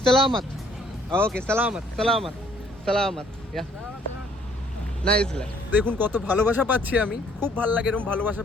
Salamat. Okay, salamat. Yeah. Nice. দেখুন কত ভালোবাসা পাচ্ছি আমি, খুব ভালো লাগে এরকম ভালোবাসা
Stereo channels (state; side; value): normal; both; correlation 0.62